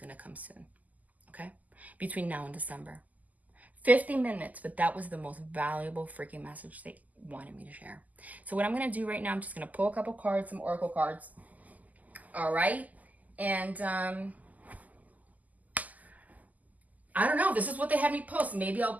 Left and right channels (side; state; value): left; late; 0.079 ms